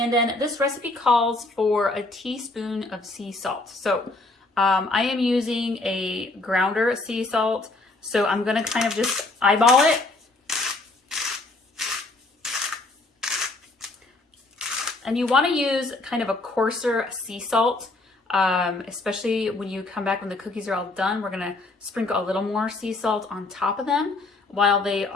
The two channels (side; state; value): right; quieter; 3.1 dB